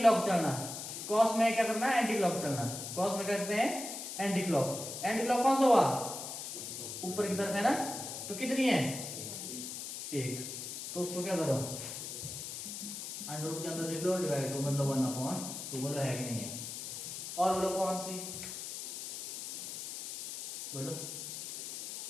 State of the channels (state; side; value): noise; left; hiss, 7 dB below the sound